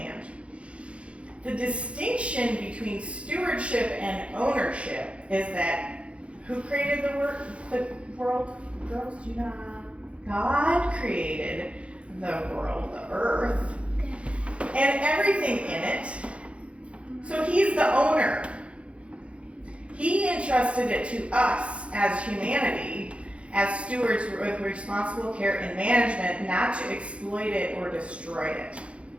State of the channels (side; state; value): left; late; 0.061 ms